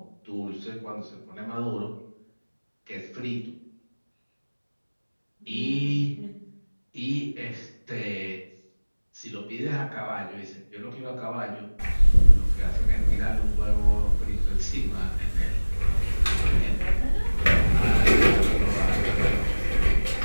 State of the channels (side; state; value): both; inverted; correlation -1.00